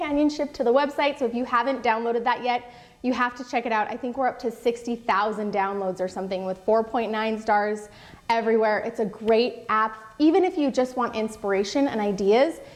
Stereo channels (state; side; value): identical; both; correlation 1.00